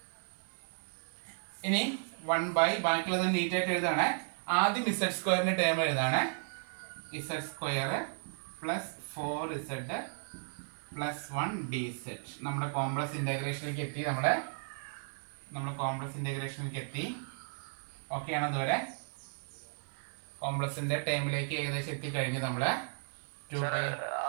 ഇനി 1/, ബാക്കിയുള്ളത് നീറ്റായിട്ട് എഴുതാണ്. ആദ്യം ഇസഡ് സ്ക്വയറിന്റെ ടേം എഴുതാണ്. Z square plus 4z plus 1 dz. നമ്മുടെ കോംപ്ലക്സ് ഇന്റഗ്രേഷനിലേക്ക് എത്തി. നമ്മുടെ കോംപ്ലക്സ് ഇന്റഗ്രേഷനിലേക്ക് എത്തി. ഓക്കെ ആണ്? അതുവരെ കോംപ്ലക്സിന്റെ ടേമിലേക്ക് ഏകദേശം എത്തിക്കഴിഞ്ഞ് നമ്മള്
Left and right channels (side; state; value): left; silent; digital silence